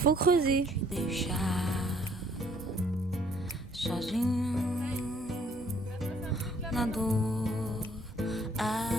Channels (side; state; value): both; normal; correlation 0.62